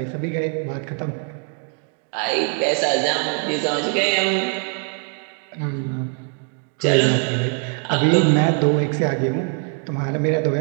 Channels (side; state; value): left; quieter; 38.0 dB